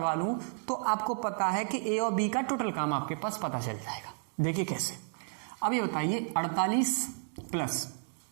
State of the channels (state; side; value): silent; left; digital silence